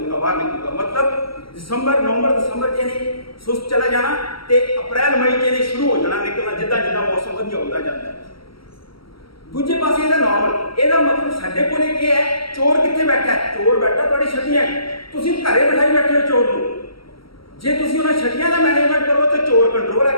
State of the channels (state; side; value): late; right; 0.75 ms